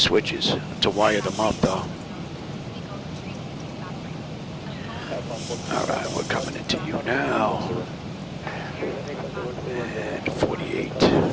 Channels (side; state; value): both; identical; correlation 1.00